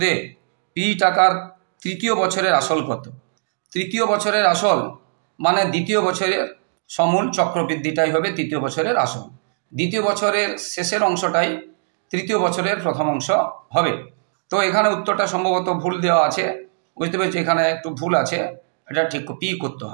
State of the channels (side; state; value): left; silent; digital silence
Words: পি টাকার তৃতীয় বছরের আসল কত? তৃতীয় বছরের আসল মানে দ্বিতীয় বছরের সমূল চক্রবৃদ্ধিটাই হবে তৃতীয় বছরের আসল। দ্বিতীয় বছরের শেষের অংশটাই তৃতীয় বছরের প্রথম অংশ হবে। তো এখানে উত্তরটা সম্ভবত ভুল দেওয়া আছে, বুঝতে পেরেছি, এখানে একটু ভুল আছে, এটা ঠিক পি করতে